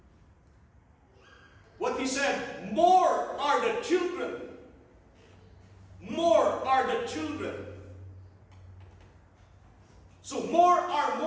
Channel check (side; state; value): both; identical; correlation 1.00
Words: What he said, more are the children. More are the children. So